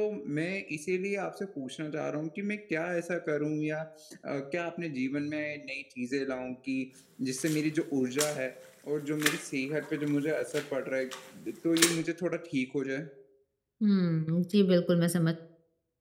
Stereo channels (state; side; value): identical; both; correlation 1.00